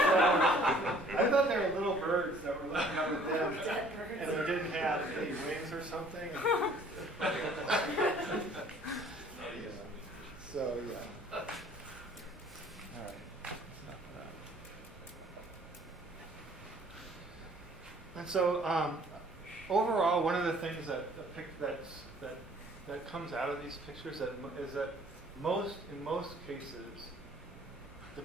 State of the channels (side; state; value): both; normal; correlation 0.56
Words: thought they were little birds that were looking up at them Dead birds. and they didn't have any wings or something. So, yeah. All right. And so, overall, one of the things that comes out of these pictures is that in most cases, the